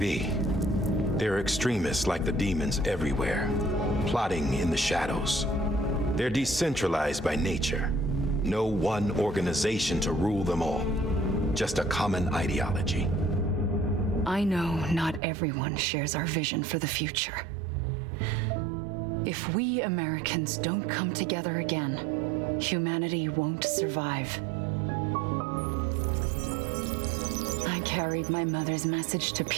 There are extremists like the demons everywhere, plotting in the shadows. They're decentralized by nature. No one organization to rule them all. Just a common ideology. I know not everyone shares our vision for the future. If we Americans don't come together again, humanity won't survive. I carried my mother's message to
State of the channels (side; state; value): left; drops out; at 15.2 s